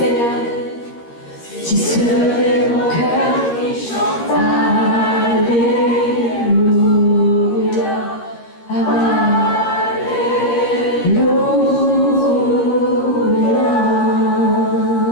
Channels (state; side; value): late; right; 13 ms